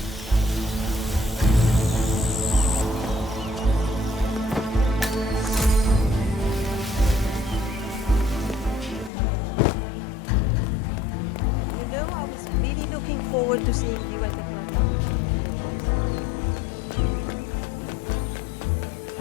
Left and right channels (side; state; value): right; drops out; at 9.1 s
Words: Looking forward to seeing you at the front.